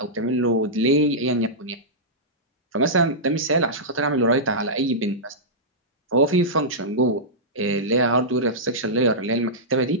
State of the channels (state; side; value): normal; both; correlation -0.13